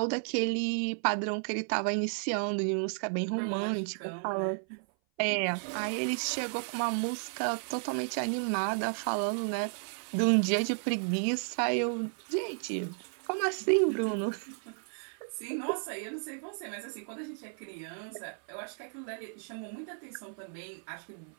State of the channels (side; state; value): left; silent; 56 dB below the other